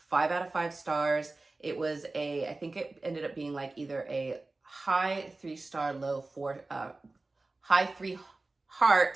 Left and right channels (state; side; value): quieter; left; 3.3 dB